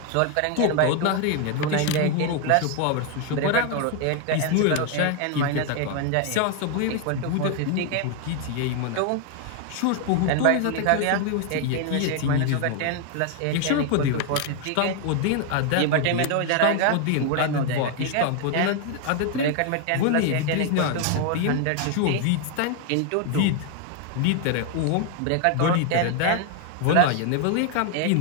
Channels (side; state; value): both; different; correlation 0.01